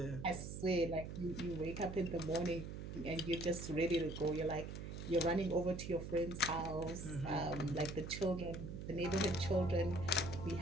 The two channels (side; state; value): right; noise; hum, 7 dB below the sound